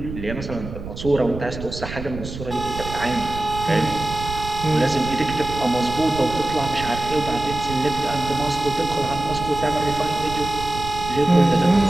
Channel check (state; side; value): noise; right; rumble, 9 dB below the sound